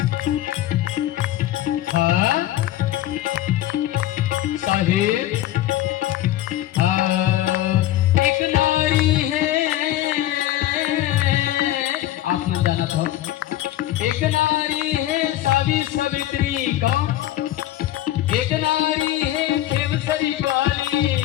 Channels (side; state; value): right; quieter; 13.9 dB